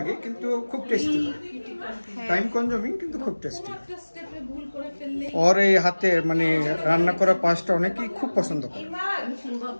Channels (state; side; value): inverted; both; correlation -1.00